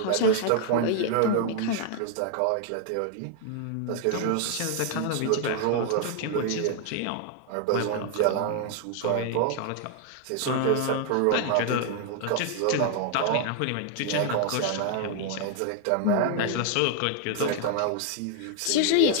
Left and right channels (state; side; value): different; both; correlation 0.00